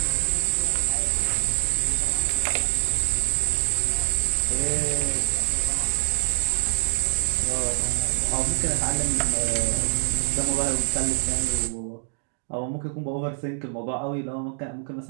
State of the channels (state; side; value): silent; left; digital silence